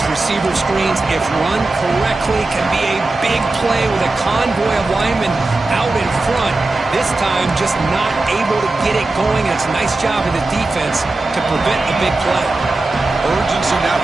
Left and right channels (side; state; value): left; quieter; 3.2 dB